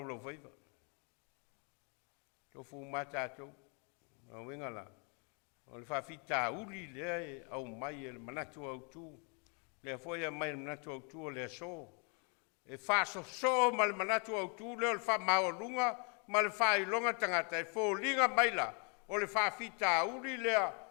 lau whaiva. Tofu ma tātou. O wingala. O le whawhita uli lea e au mai e le manatu au tū. Le foia mai le manatu au tū o le so. E whaso so ma le manatu au tū leo le wha mao lunga ma le wha ilonga tangata e fōlinga maila. O le whawhita uli lea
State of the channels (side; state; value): right; quieter; 36.7 dB